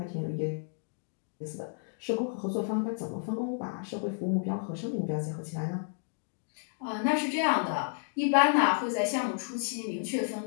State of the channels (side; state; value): right; silent; digital silence